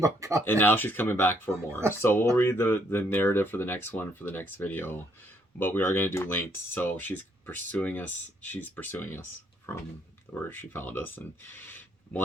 on coming. And now she's coming back for more. So we'll read the narrative for the next one for the next video, but we are gonna do linked. So she's pursuing us from where she found us, and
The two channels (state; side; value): normal; both; correlation 0.70